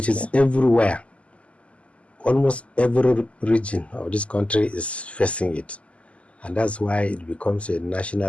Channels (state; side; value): late; right; 0.060 ms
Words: is everywhere. Almost every region of this country is facing it. And that's why it becomes a